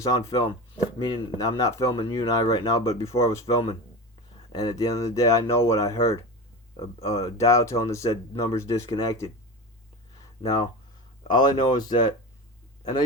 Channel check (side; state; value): both; normal; correlation 0.26